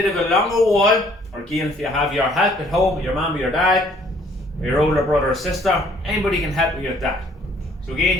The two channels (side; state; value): both; normal; correlation 0.61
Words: of a longer wall, or again if you have your help at home, your mum or your dad, or your older brother or sister, anybody can help you with that. So again,